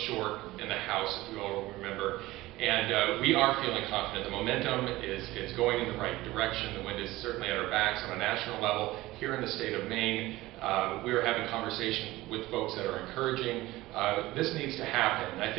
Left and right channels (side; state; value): left; quieter; 18.2 dB